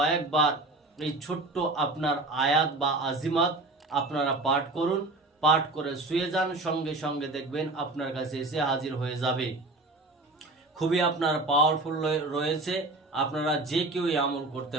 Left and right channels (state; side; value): quieter; left; 3.0 dB